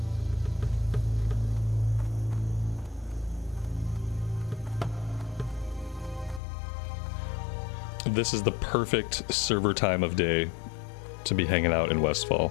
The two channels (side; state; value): right; drops out; at 6.4 s